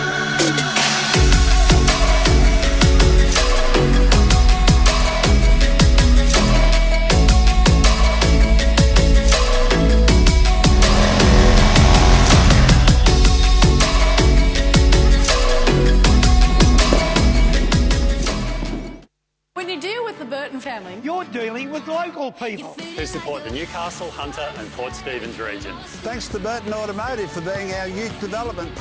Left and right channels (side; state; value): both; identical; correlation 1.00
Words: When you deal with the Burton family, You're dealing with local people who support the Newcastle, Hunter and Port Stephens regions. Thanks to Burton Automotive for being our youth development